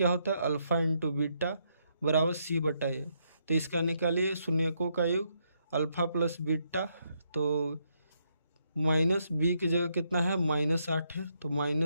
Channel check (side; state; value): both; inverted; correlation -0.76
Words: होता है, अल्फा × बीटा बराबर c/a। तो इसका निकालिए शून्यकों का योग अल्फा प्लस बीटा, तो -b की जगह कितना है, -8 है, तो